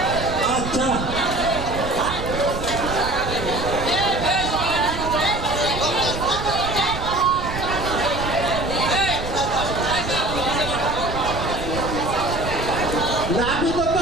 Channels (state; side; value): noise; right; rumble, 8 dB below the sound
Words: আচ্ছা নাপিত তো